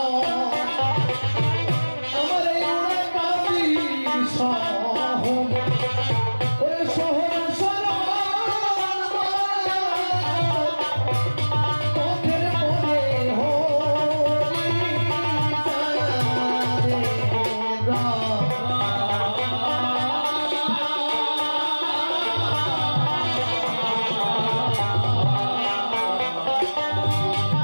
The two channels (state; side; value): inverted; both; correlation -1.00